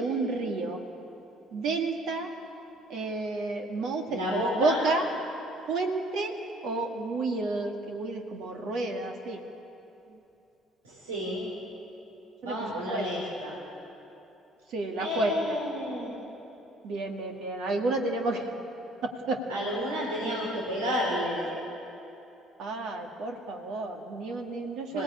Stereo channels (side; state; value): both; normal; correlation 0.55